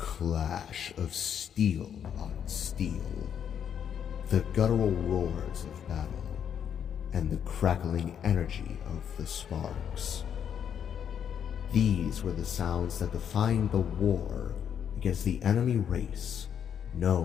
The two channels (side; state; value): right; quieter; 8.5 dB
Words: of steel on steel, the guttural roars of battle, and the crackling energy of the sparks. These were the sounds that defined the war against the enemy race